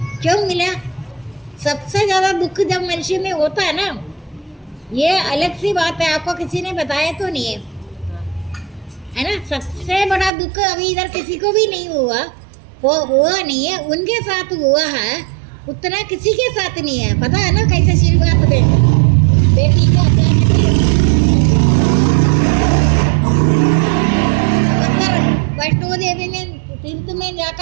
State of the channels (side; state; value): left; drops out; at 10.3 s